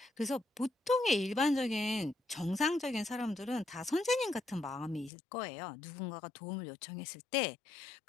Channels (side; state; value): right; drops out; at 5.1 s